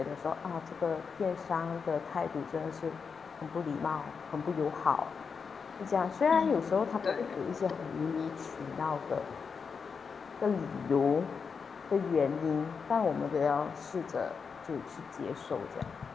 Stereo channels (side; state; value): right; quieter; 5.7 dB